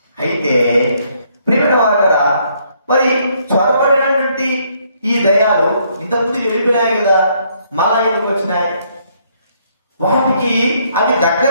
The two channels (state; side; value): inverted; both; correlation -0.69